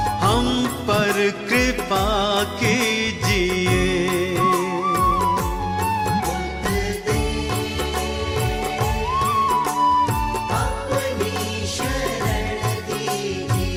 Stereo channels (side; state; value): both; identical; correlation 1.00